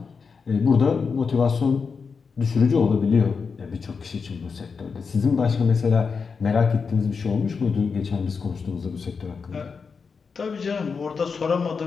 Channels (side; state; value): right; quieter; 5.3 dB